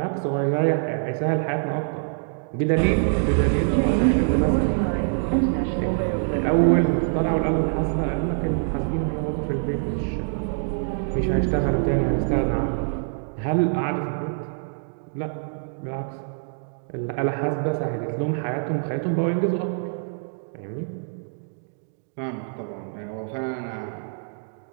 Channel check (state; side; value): silent; left; digital silence